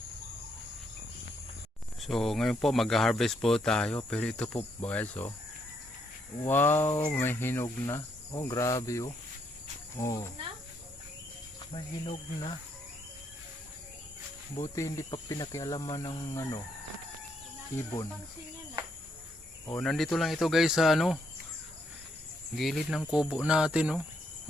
So, ngayon po, mag-harvest po tayo. Pero ito po, guys, oh. Wow, may hinog na. Oh, grabe, oh. Oh, may hinog na. Buti hindi pa pinakialaman ng ano, ibon. Oh, nandito lang ito guys sa ano, gilid ng kubo natin, oh.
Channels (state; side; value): normal; both; correlation 0.74